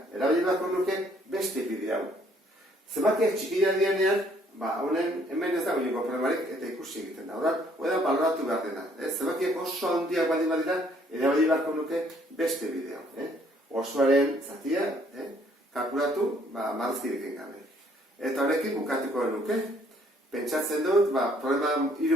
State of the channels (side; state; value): both; normal; correlation 0.64